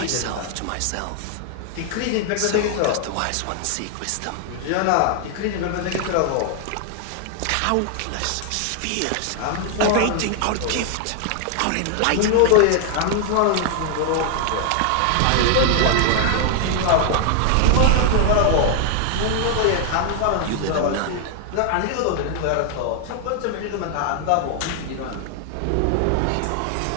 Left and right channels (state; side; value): different; both; correlation 0.00